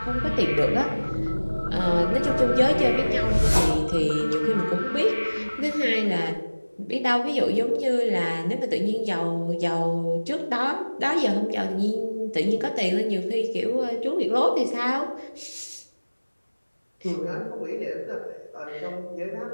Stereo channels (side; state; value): both; inverted; correlation -1.00